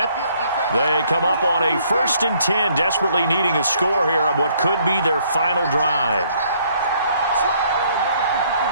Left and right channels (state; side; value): inverted; both; correlation -0.65